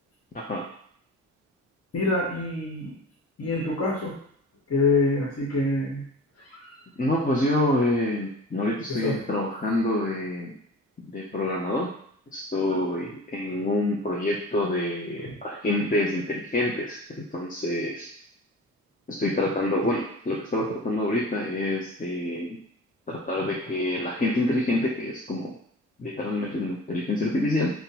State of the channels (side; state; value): both; normal; correlation 0.39